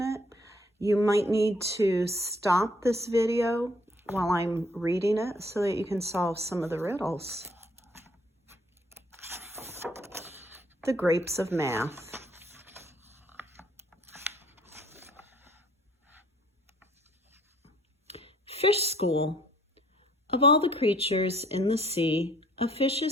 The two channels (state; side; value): normal; both; correlation 0.62